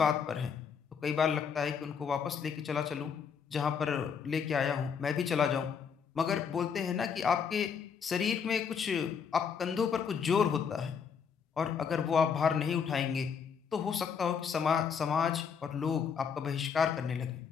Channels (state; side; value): quieter; right; 6.7 dB